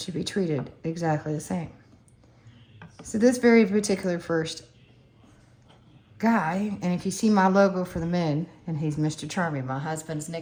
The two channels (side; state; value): both; identical; correlation 1.00